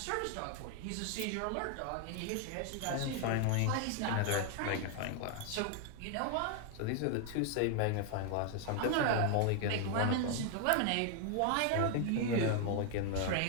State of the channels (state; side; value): different; both; correlation 0.00